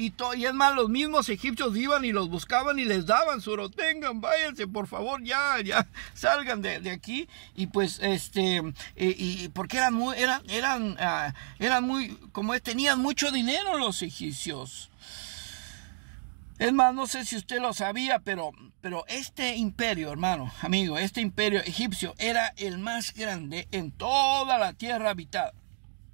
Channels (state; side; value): silent; left; 58 dB below the other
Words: es más, los mismos egipcios iban y los buscaban y les daban su oro. Tengan, váyanse, por favor, ya salgan de aquí. Y pues y porque eran muy, como tenían mucho dinero los egipcios. Es más, no sé si usted lo sabía, pero este imperio, hermano, amigo, este imperio egipcio era el más grande en toda la tierra habitada.